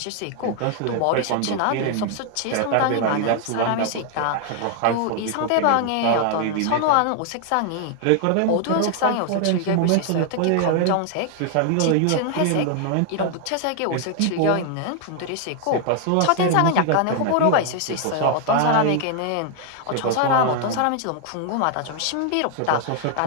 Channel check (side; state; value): both; different; correlation 0.00